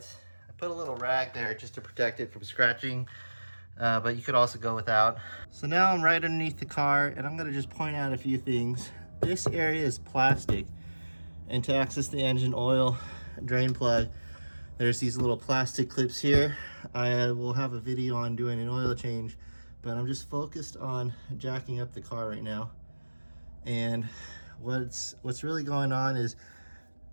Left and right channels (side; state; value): both; inverted; correlation -1.00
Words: I put a little rag there just to protect it from scratching, but you could also go without. So now I'm right underneath the car, and I'm gonna just point out a few things. This area is plastic, and to access the engine oil drain plug, there's these little plastic clips here. I will have a video on doing an oil change, but I'm just focused on jacking up the car right now. And what's really going on is,